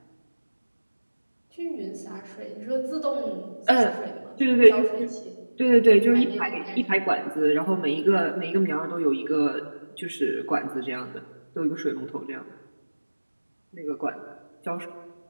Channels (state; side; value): inverted; both; correlation -1.00